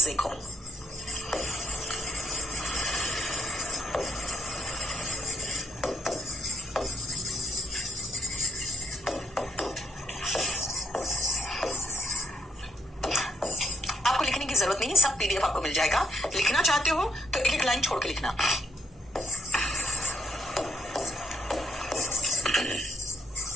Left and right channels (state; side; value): normal; both; correlation 0.72